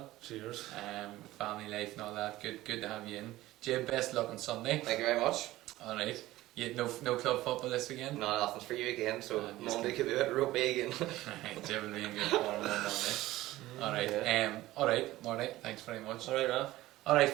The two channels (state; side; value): quieter; left; 16.7 dB